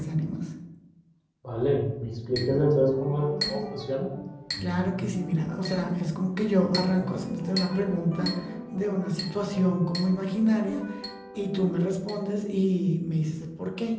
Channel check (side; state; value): both; identical; correlation 1.00